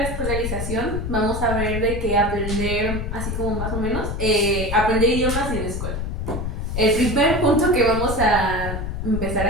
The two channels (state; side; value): noise; left; rumble, 4 dB below the sound